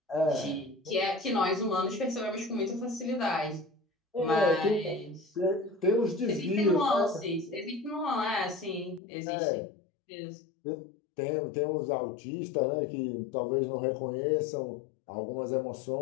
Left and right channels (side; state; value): right; drops out; at 9.0 s